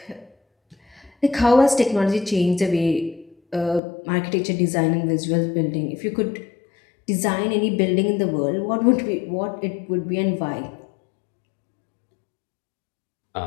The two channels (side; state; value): right; drops out; at 3.8 s